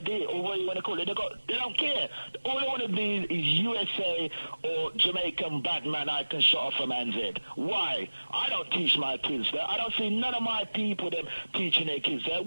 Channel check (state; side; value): inverted; both; correlation -1.00